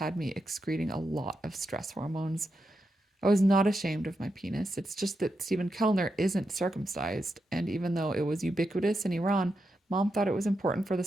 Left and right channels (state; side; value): normal; both; correlation 0.86